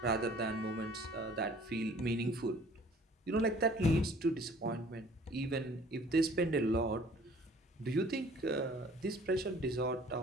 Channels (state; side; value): normal; both; correlation 0.52